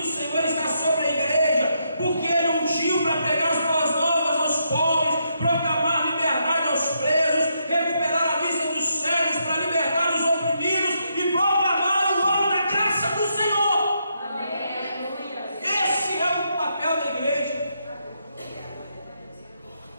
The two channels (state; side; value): inverted; both; correlation -0.78